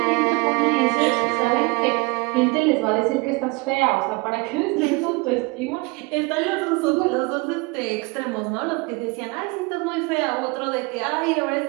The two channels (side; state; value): left; quieter; 26.7 dB